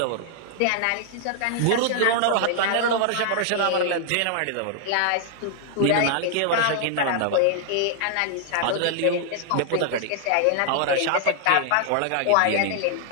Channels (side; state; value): both; different; correlation 0.00